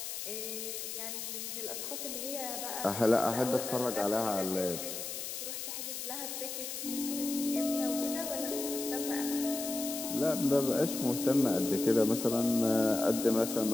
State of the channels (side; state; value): left; noise; hiss, 6 dB below the sound